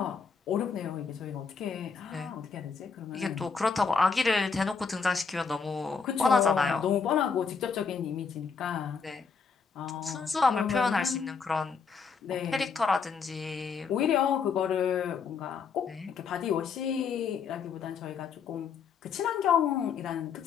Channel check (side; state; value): right; quieter; 5.6 dB